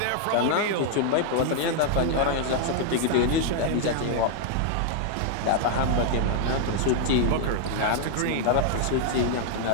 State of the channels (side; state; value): both; different; correlation 0.00